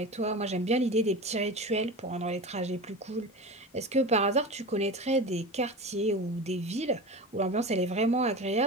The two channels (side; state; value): both; normal; correlation 0.29